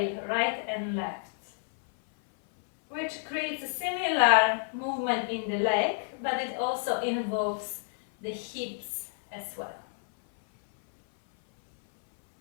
right and left, which creates a similar movement in the leg, but it also involves the hips as well.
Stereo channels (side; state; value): right; silent; 58 dB below the other